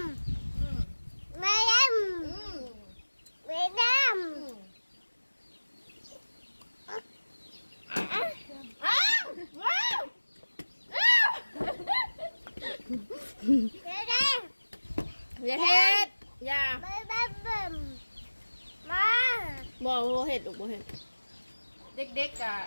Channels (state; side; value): inverted; both; correlation -1.00